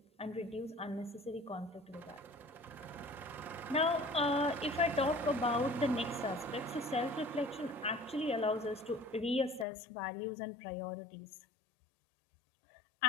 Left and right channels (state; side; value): drops out; right; at 9.7 s